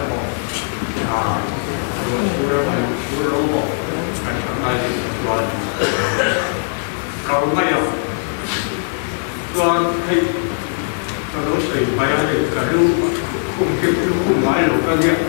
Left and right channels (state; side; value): silent; right; digital silence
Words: bỏ rồi chú đâu bỏ anh không ai rồi cầu ngay không còn thì nó đối xử với anh cả lưu cùng kịp lưu cùng mãi lục các việc